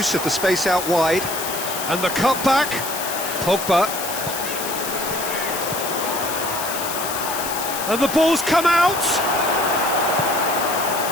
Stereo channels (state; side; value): noise; left; hiss, 6 dB below the sound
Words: of the space out wide. And the cutback. Pogba. And the ball's come out!